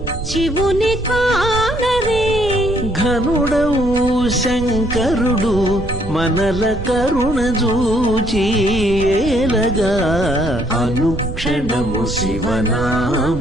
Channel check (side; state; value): right; noise; rumble, 8 dB below the sound